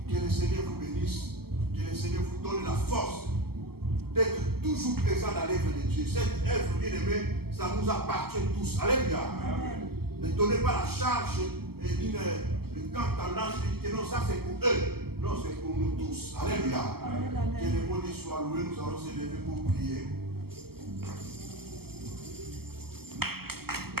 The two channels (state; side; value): late; left; 0.96 ms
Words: Que le Seigneur vous bénisse, que le Seigneur vous donne la force d'être toujours présent dans l'œuvre de Dieu. Cette œuvre, bien aimée, ça nous appartient tous. Alléluia. Amen. Ne donnez pas la charge et quand tendance dit que non, ça c'est pour eux. Non, c'est pour nous tous. Alléluia. Que le bon Dieu soit loué, nous allons se lever pour prier.